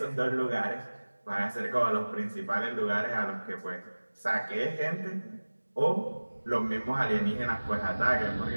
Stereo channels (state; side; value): inverted; both; correlation -1.00